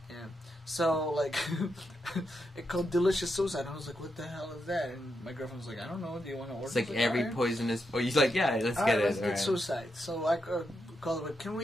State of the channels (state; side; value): normal; both; correlation 0.84